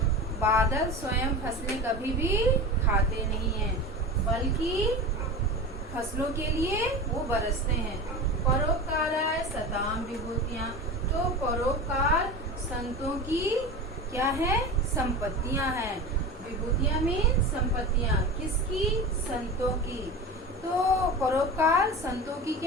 बादल स्वयं फसलें कभी भी खाते नहीं हैं बल्कि फसलों के लिए वो बरसते हैं। परोपकाराय सताम विभूतियाँ, तो परोपकार संतों की क्या है, संपत्तियां हैं। विभूतियां मीन संपत्तियां, किसकी, संतों की। तो परोपकार संतों की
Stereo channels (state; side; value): normal; both; correlation 0.29